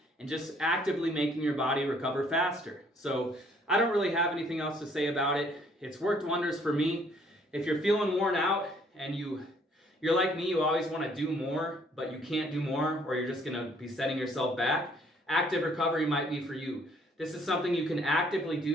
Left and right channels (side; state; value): both; normal; correlation 0.63